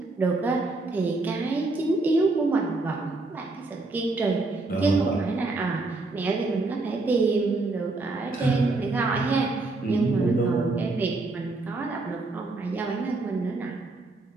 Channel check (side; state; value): left; quieter; 3.3 dB